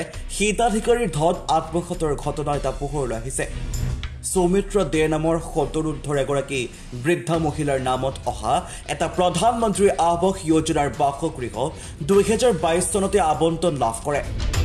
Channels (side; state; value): both; identical; correlation 1.00